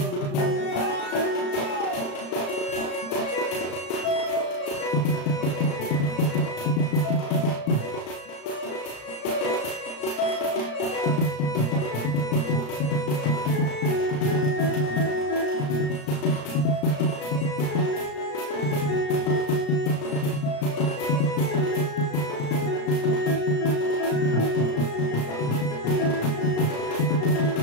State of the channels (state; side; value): late; right; 35 ms